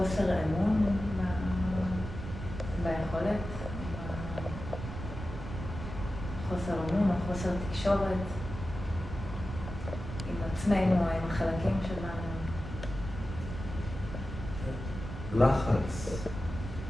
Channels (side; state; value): right; noise; rumble, 8 dB below the sound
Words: אמון ביכולת, חוסר אמון או חוסר תקשורת עם עצמנו או עם החלקים שלנו. לחץ